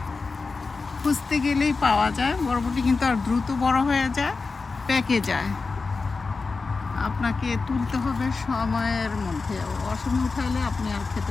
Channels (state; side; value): quieter; right; 4.2 dB